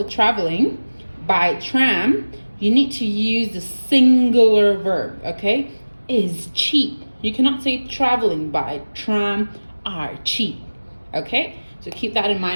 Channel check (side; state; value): both; inverted; correlation -1.00